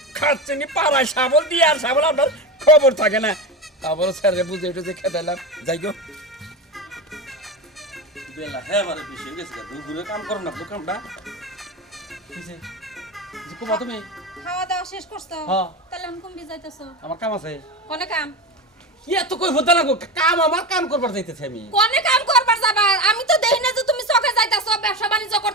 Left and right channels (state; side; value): normal; both; correlation 0.21